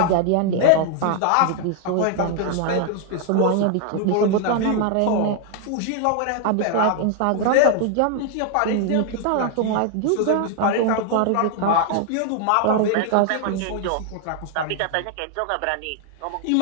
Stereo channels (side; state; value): both; different; correlation 0.00